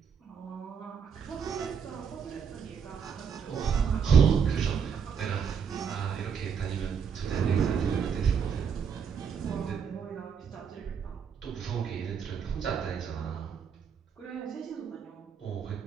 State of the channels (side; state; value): left; quieter; 6.9 dB